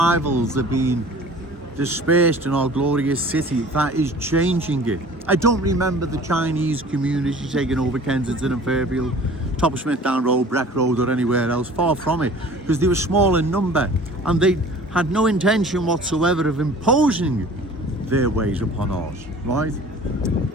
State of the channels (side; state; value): both; normal; correlation 0.46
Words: are being dispersed in our glorious city. That is changing it. I don't remember the Chinese community taking over Kensington and Fairfield, top of Smithdown Road, Breck Road or anywhere else. Far from it, because they were small in number and they had no intention whatsoever of imposing their ways upon ours, right?